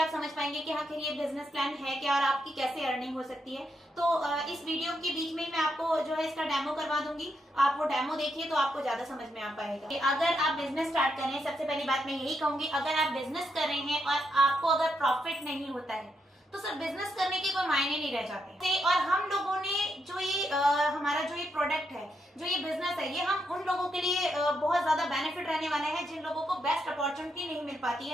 समझ पाएंगे कि आखिर ये बिजनेस प्लान है क्या और आपकी कैसे अर्निंग हो सकती है। तो इस वीडियो के बीच में मैं आपको जो है इसका डेमो करवा दूंगी, आप वो डेमो देखिए तो आपको ज्यादा समझ में आ पाएगा। अगर आप बिजनेस स्टार्ट कर रहे हैं, सबसे पहली बात मैं यही कहूंगी, अगर आप बिजनेस कर रहे हैं और आपको अगर प्रॉफिट नहीं होता है तो सर बिजनेस करने के कोई मायने नहीं रह जाते। और हम लोगों ने जो ये हमारा जो ये प्रोडक्ट है, जो ये बिजनेस है, ये हम उन लोगों के लिए बहुत ज्यादा बेनिफिट रहने वाला है जिन लोगों को बेस्ट अपॉर्चुनिटी नहीं मिल पाती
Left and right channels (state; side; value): normal; both; correlation 0.81